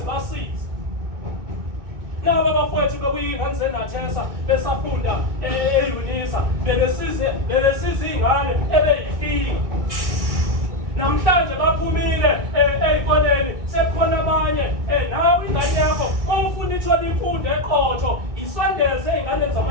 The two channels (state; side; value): late; left; 2.2 ms